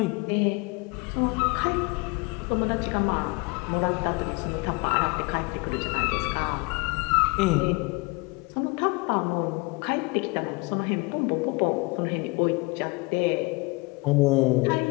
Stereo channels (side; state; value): right; quieter; 27.5 dB